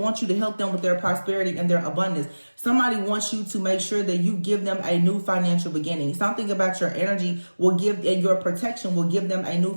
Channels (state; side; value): inverted; both; correlation -1.00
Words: you to help them with their prosperity and their abundance. Somebody wants you to make sure that you give them a new financial beginning. Something about your energy will give, and your protection will give them a new